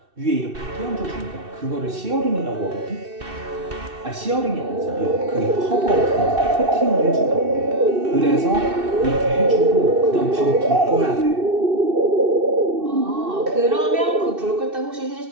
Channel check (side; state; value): left; late; 2.7 ms